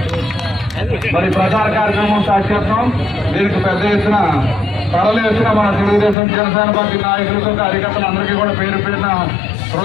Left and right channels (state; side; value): drops out; right; at 6.2 s